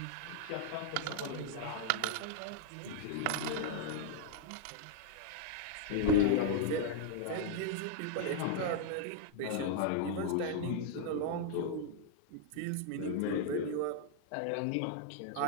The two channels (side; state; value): both; different; correlation -0.01